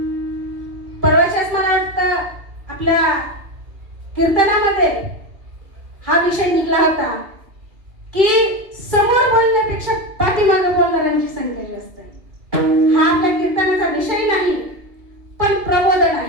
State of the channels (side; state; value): left; late; 2.3 ms